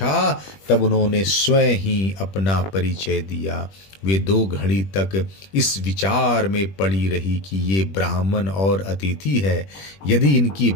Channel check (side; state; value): right; late; 21 ms